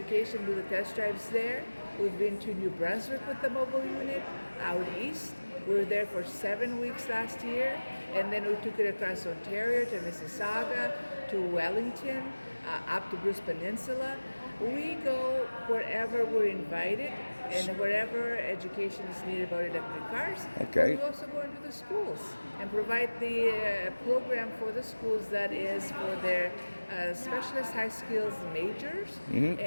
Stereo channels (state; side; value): inverted; both; correlation -1.00